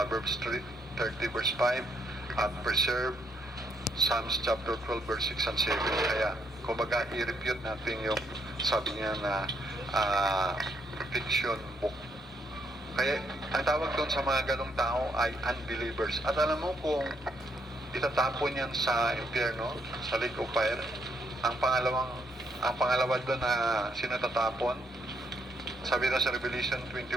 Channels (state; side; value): normal; both; correlation 0.73